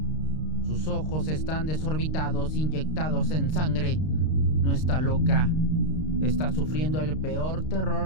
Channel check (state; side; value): late; right; 32 ms